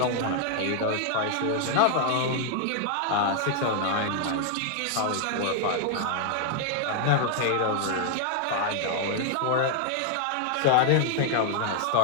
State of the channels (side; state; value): both; different; correlation 0.00